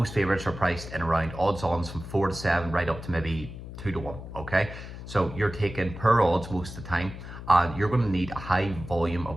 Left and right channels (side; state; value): left; noise; hum, 11 dB below the sound